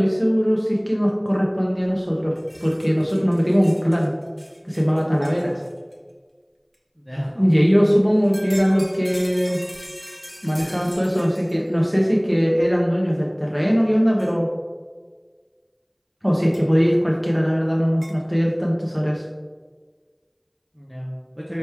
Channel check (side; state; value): both; identical; correlation 1.00